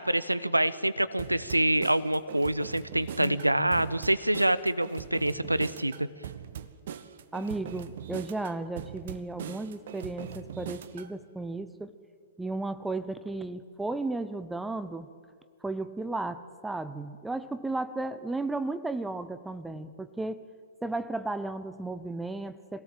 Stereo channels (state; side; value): inverted; both; correlation -0.48